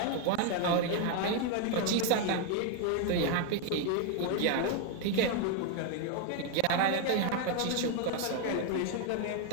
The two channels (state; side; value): different; both; correlation 0.00